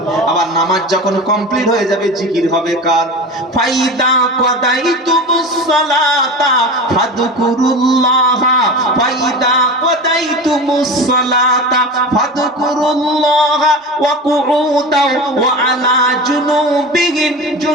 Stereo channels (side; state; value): both; normal; correlation 0.30